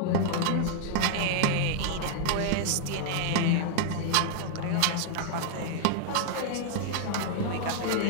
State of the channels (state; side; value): different; both; correlation -0.01